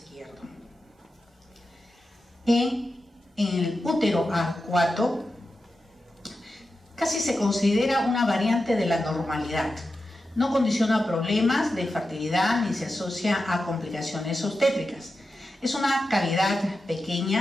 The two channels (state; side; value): normal; both; correlation 0.91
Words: En el útero arcuato casi se considera una variante de la normalidad. No condiciona problemas de fertilidad ni se asocia a complicaciones obstétricas. Es una cavidad